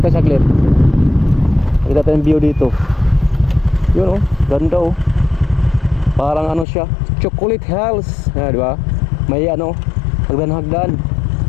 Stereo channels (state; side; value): drops out; right; at 6.7 s